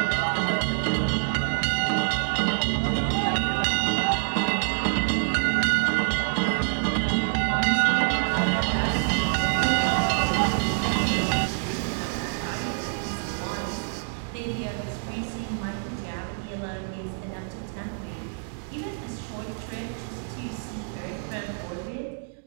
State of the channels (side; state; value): left; silent; digital silence